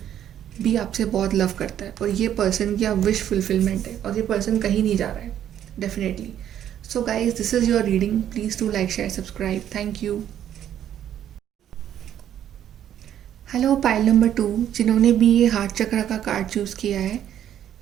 भी आपसे बहुत लव करता है और ये पर्सन की आप विश फुलफिलमेंट है और ये पर्सन कहीं नहीं जा रहा है definitely. So guys, this is your reading. Please do like, share, subscribe. Thank you. Hello pile number 2, जिन्होंने भी ये हार्ट चक्र का कार्ड चूज़ किया है,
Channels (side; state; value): left; quieter; 10.6 dB